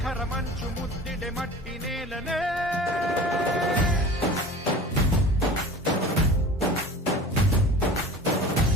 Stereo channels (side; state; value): both; normal; correlation 0.39